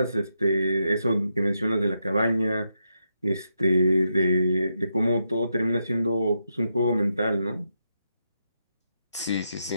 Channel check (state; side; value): inverted; both; correlation -0.83